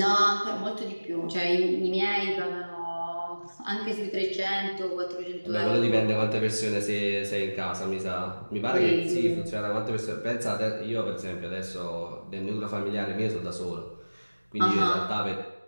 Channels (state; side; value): inverted; both; correlation -1.00